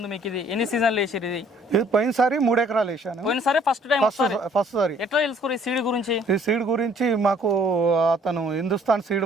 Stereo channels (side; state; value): both; normal; correlation 0.59